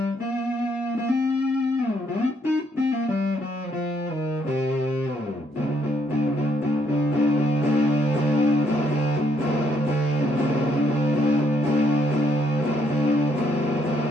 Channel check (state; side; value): normal; both; correlation 0.71